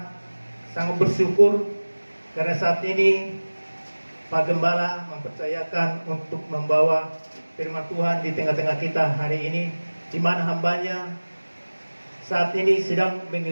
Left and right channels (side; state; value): both; inverted; correlation -1.00